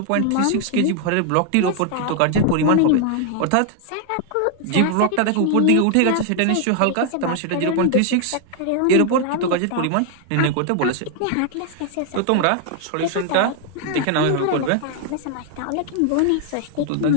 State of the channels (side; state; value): both; different; correlation 0.00